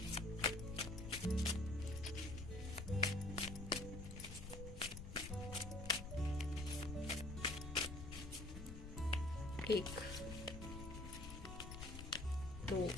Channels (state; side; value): noise; left; rumble, 8 dB below the sound